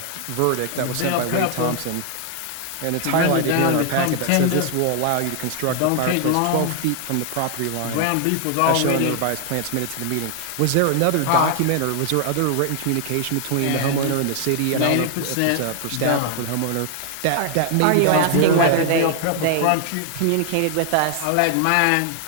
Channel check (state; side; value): different; both; correlation 0.00